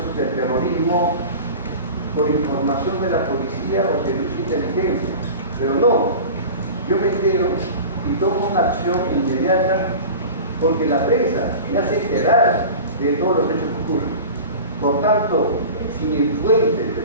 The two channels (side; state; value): both; inverted; correlation -0.35